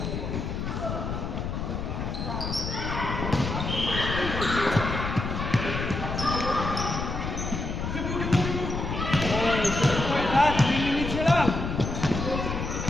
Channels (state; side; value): noise; left; rumble, 3 dB below the sound